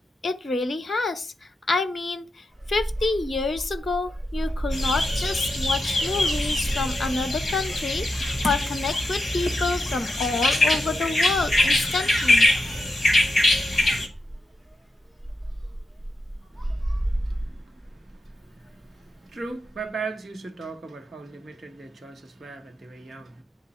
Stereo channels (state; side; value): normal; both; correlation 0.87